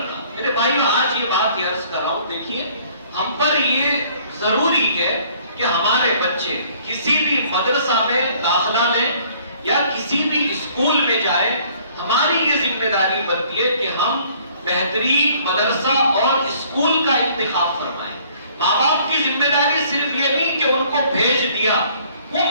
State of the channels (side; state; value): both; inverted; correlation -0.58